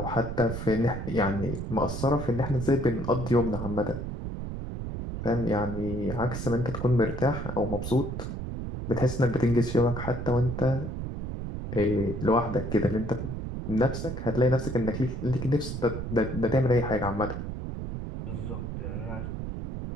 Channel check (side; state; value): right; noise; rumble, 5 dB below the sound